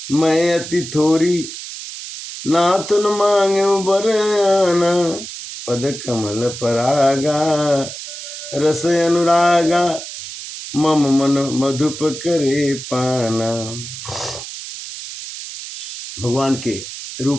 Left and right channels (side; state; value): right; noise; hiss, 10 dB below the sound